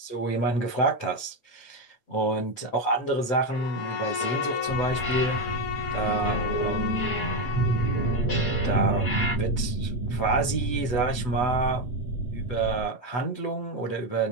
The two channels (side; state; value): right; late; 8.1 ms